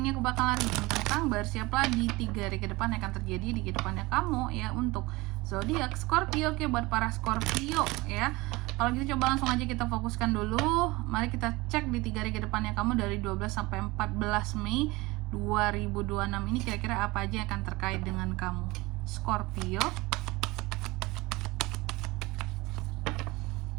aku bakalan reading tentang bersiaplah di 3 hari ke depan yang akan terjadi di kehidupannya kamu ya, untuk zodiak Scorpio. Oke, buat para Scorpio ya. Kalau gitu coba langsung aja kita fokuskan dulu. Mari kita cek di 3 hari ke depannya kamu dari 12 sampai 14 Mei 2026 ini kira-kira apa aja yang akan terkait dengan kamu Scorpio.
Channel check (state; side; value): quieter; left; 22.2 dB